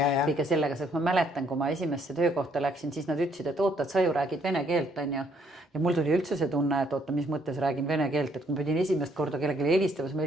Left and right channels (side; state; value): both; normal; correlation 0.68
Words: sellega, sest ma mäletan, kui ma esimesse töökohta läksin, siis nad ütlesid, et oota, et sa ju räägid vene keelt, on ju. Ja mul tuli üldse see tunne, et oota, mis mõttes räägin vene keelt, et kui ma pidin esimest korda kellelegi helistamas, ma